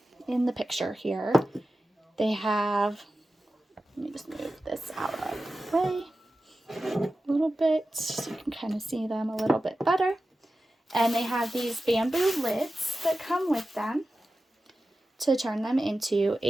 picture here, they have, let me just move this out of the way a little bit so you can kind of see them a little bit better. And they have these bamboo lids that come with them to turn them into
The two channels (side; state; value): both; normal; correlation 0.94